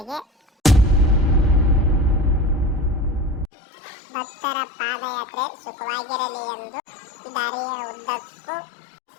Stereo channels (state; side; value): drops out; right; at 3.5 s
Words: ಭಕ್ತರ ಪಾದಯಾತ್ರೆ ಸುಖವಾಗಿರಲಿ ಎಂದು ದಾರಿಯ ಉದ್ದಕ್ಕೂ